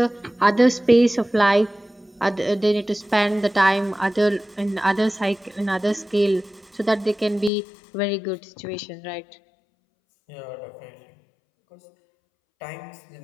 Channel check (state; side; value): drops out; right; at 7.5 s